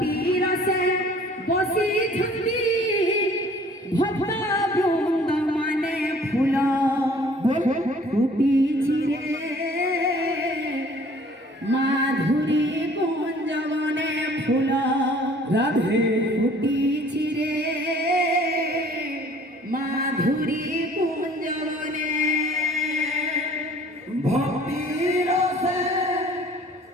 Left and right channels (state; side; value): normal; both; correlation 0.53